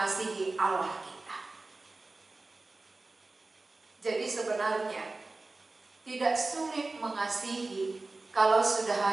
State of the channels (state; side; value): quieter; left; 3.3 dB